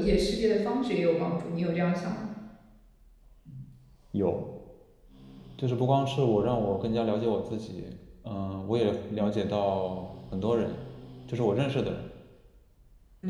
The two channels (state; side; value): identical; both; correlation 1.00